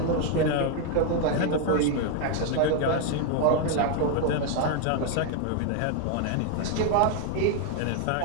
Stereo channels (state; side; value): different; both; correlation 0.01